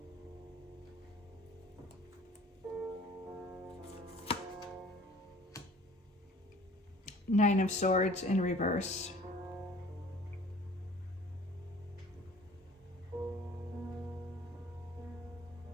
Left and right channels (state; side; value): normal; both; correlation 0.50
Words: Nine of Swords in reverse.